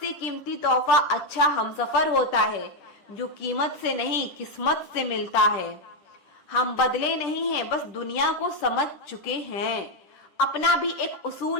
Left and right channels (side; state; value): right; late; 10 ms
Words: कीमती तोहफा अच्छा हमसफर होता है, जो कीमत से नहीं किस्मत से मिलता है। हम बदले नहीं हैं, बस दुनिया को समझ चुके हैं। अपना भी एक